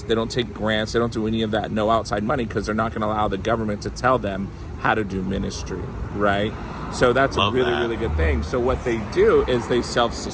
They don't take grants. They don't do any of that. No outside money, because they're not going to allow the government to tell them how to do ministry, right? So that's a really good thing. So what they do is they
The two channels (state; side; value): identical; both; correlation 1.00